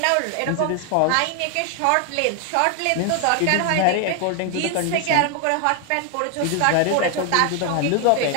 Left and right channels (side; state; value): both; different; correlation 0.00